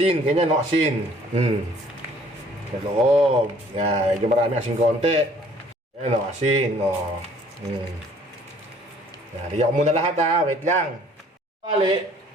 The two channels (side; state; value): both; normal; correlation 0.57